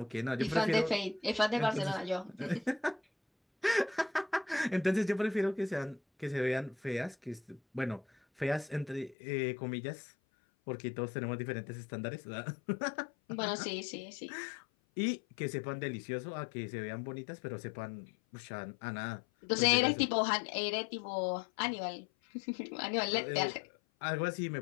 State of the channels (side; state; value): right; drops out; at 9.2 s